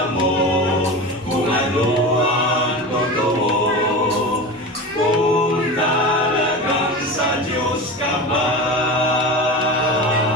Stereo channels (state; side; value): normal; both; correlation 0.27